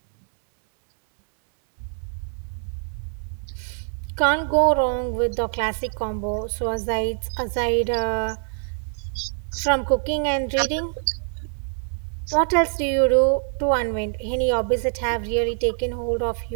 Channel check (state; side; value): silent; left; 62 dB below the other